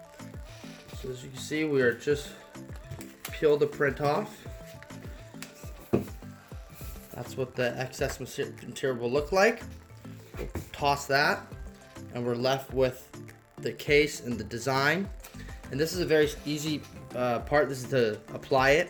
So as you can see, we are just peel the print off. That's what the excess material will look like. We'll toss that, and we're left with the case and the design. And this is a very easy part. This is to apply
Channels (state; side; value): identical; both; correlation 1.00